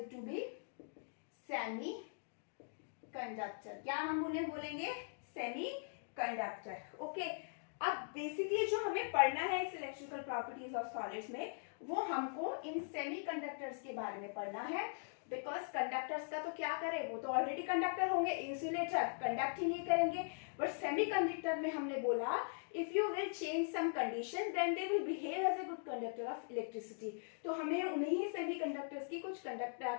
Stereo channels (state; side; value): silent; right; digital silence